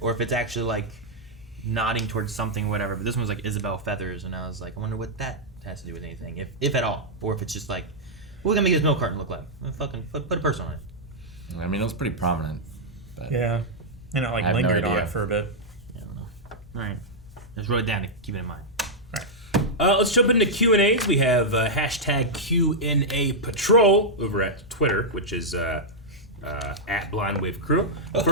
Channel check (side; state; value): both; normal; correlation -0.06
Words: if it's actually, like, nodding towards something or whatever. But this one was, like, Isabel Feathers, and I was like, I wonder what that has to do with anything, if at all. Or if it's just like, what are we going to make this milk carton look like? Well, fucking put a person on it. I mean, it was pretty prominent. But yeah. And it, like, lingered on it for a bit. Alright. Just wrote it down to keep it in mind. Let's jump into Q&As. We have hashtag Q&A Patrol over at Twitter, which is at Blind Wave Crew.